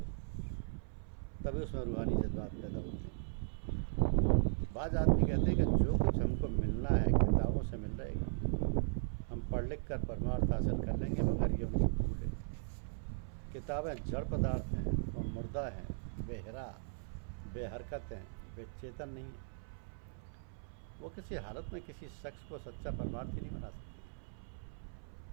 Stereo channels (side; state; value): left; silent; 53 dB below the other